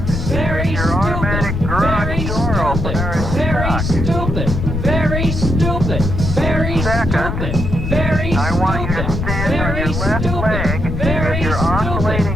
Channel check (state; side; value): noise; left; rumble, 2 dB below the sound